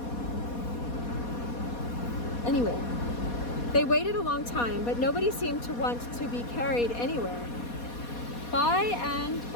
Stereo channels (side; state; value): right; late; 4.2 ms